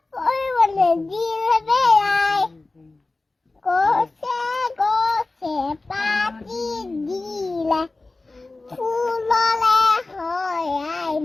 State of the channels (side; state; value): right; quieter; 3.3 dB